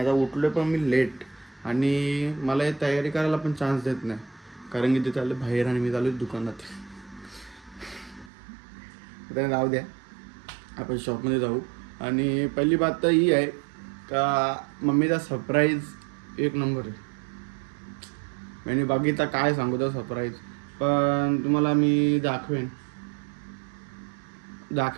आता उठलो पण मी लेट आणि मला हे तयारी करायला पण चान्स देत नाही, कारण की ते चालले बाहेर आणि मी चालू दुकानात. तर जाऊ द्या, आपण शॉपमध्ये जाऊ. आणि पहिली बात तर ही आहे का मम्मीचा सरप्राईज एक नंबर आहे. आणि बघितला काय सांगू तो सरप्राईज, पण तुम्हाला मी दाखवेन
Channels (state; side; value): drops out; left; at 8.3 s